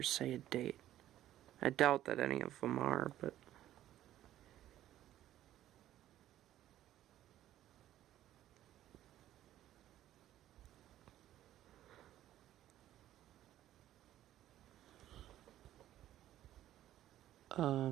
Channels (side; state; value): left; quieter; 13.0 dB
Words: say a date. I doubt that any of them are, but...